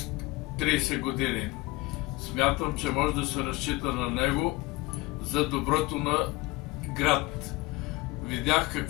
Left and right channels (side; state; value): right; quieter; 21.1 dB